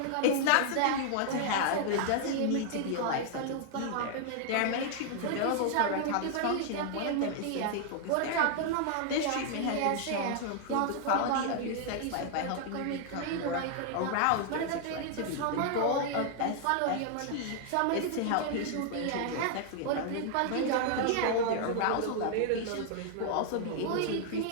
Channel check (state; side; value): different; both; correlation 0.00